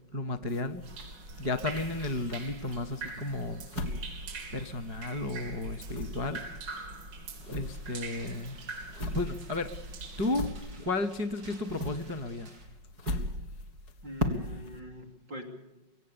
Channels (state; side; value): late; left; 5.4 ms